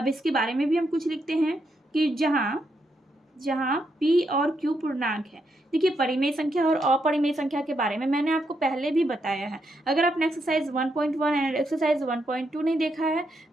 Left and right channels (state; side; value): normal; both; correlation 0.80